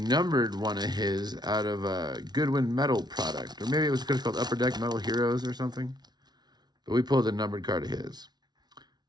one of his out of a Goodwin metal product. Or maybe it was called Upper Deck Metal Heroes or something. But we pulled a numbered card of his.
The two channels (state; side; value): late; left; 0.20 ms